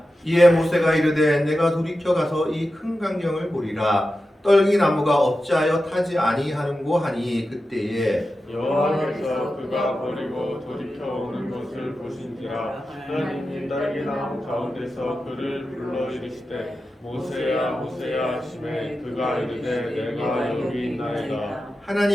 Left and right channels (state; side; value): normal; both; correlation 0.92